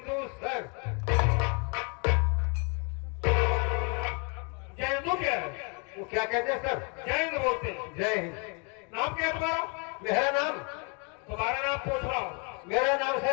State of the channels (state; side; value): quieter; right; 35.2 dB